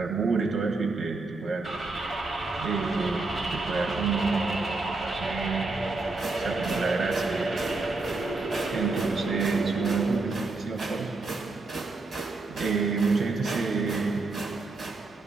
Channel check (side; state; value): left; quieter; 3.5 dB